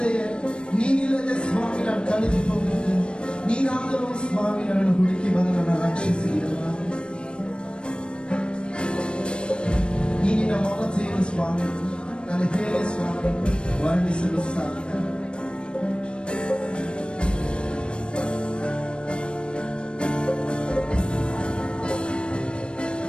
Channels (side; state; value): right; late; 0.056 ms